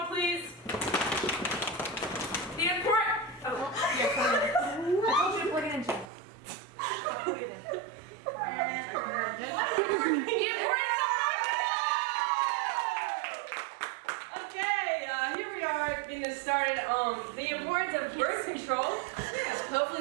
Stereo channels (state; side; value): drops out; left; at 6.1 s